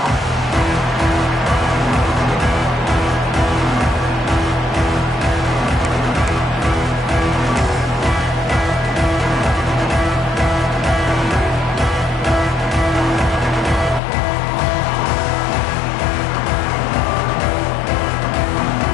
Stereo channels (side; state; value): right; drops out; at 14.0 s